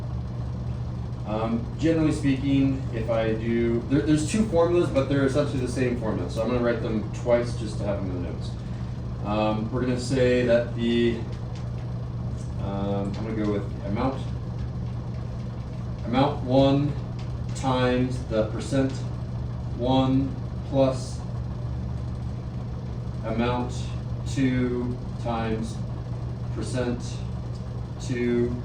Generally speaking, if I do, there's two formulas, but they're essentially the same formula, so I'm going to write them twice just to have them in the notes. We're going to say that the, I'm going to go with amount 1 times the percent 1 plus amount 2 times percent 2,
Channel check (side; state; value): both; identical; correlation 1.00